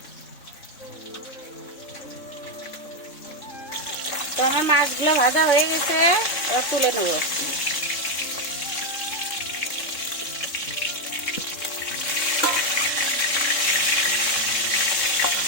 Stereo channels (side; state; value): right; late; 3.7 ms